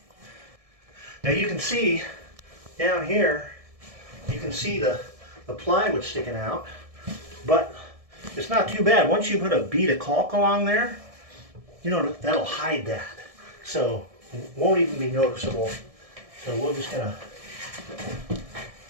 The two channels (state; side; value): late; left; 1.7 ms